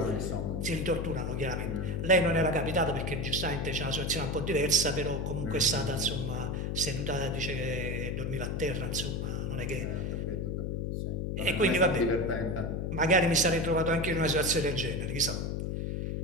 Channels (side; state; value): left; noise; hum, 1 dB below the sound